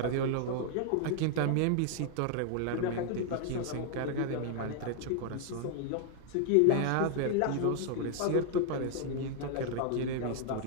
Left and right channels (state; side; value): different; both; correlation 0.00